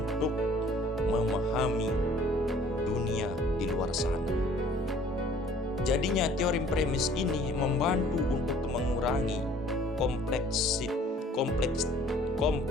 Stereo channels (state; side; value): normal; both; correlation 0.54